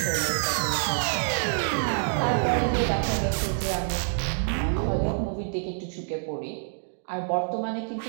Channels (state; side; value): silent; left; 60 dB below the other